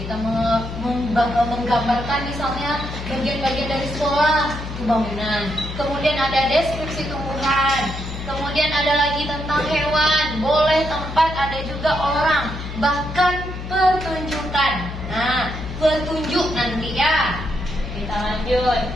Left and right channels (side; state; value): left; noise; hum, 8 dB below the sound